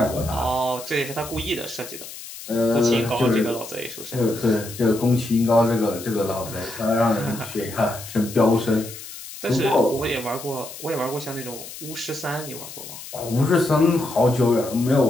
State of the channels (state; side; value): noise; left; hiss, 13 dB below the sound